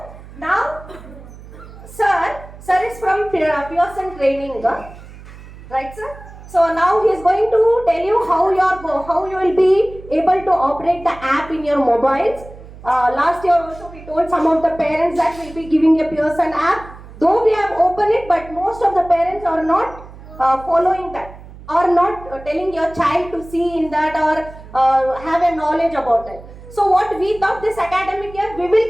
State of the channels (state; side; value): noise; right; hum, 18 dB below the sound